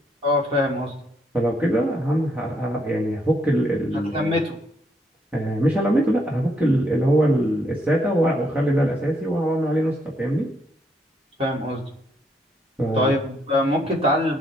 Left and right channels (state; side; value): normal; both; correlation 0.74